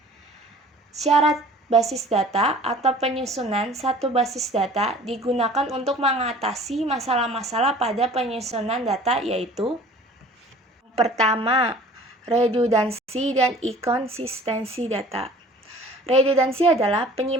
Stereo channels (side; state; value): both; normal; correlation 0.48